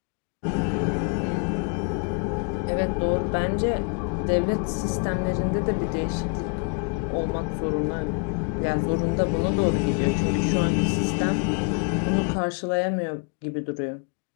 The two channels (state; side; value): quieter; right; 38.5 dB